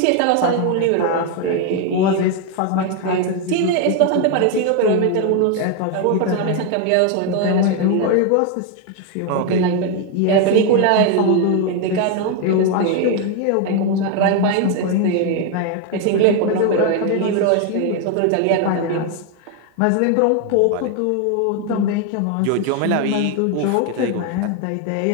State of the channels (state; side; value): different; both; correlation 0.01